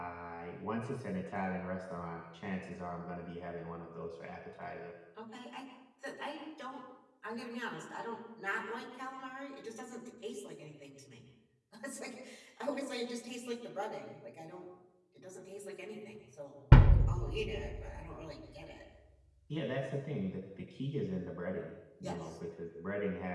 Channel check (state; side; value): identical; both; correlation 1.00